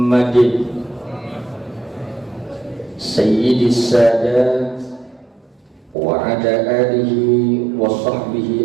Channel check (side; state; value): left; drops out; at 6.0 s